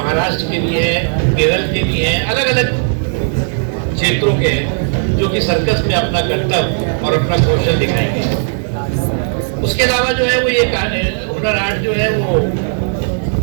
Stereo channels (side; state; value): left; silent; 66 dB below the other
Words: के भी हैं, केरल के भी हैं, अलग अलग क्षेत्रों के हैं, जो कि सर्कस में अपना कर्तव्य और अपना कौशल दिखाएंगे। उसके अलावा जो है वो ये हुनर हाट जो है वो